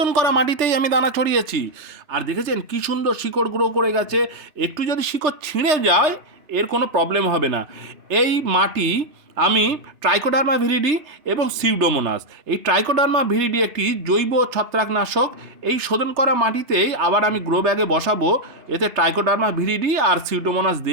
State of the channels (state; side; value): late; left; 3.3 ms